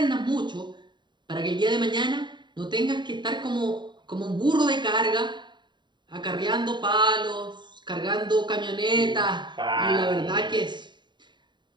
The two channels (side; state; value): left; late; 0.22 ms